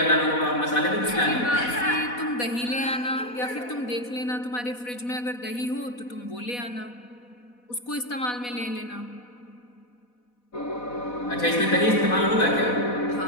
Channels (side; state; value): right; late; 4.1 ms